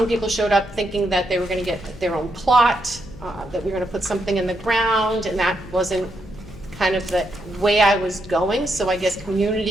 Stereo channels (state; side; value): noise; left; hum, 18 dB below the sound